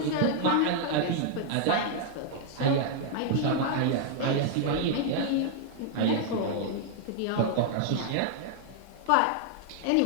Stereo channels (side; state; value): both; different; correlation 0.00